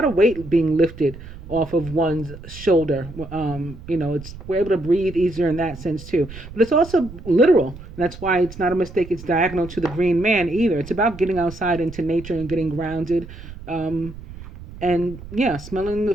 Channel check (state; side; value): noise; right; rumble, 15 dB below the sound